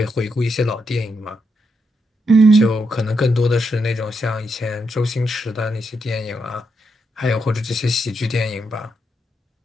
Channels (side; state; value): both; normal; correlation 0.81